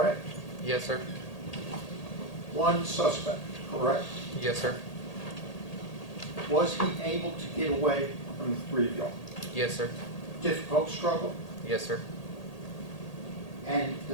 Yes, sir. 1 suspect, correct? Yes, sir. Was he able to get away from the 3 of y'all? Yes, sir. Difficult struggle? Yes, sir. And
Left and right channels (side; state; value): right; late; 1.8 ms